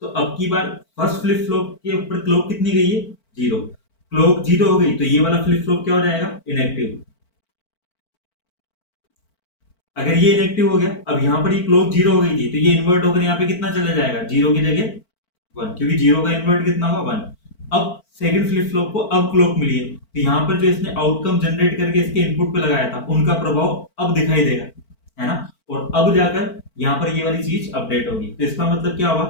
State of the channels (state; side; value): late; right; 4.5 ms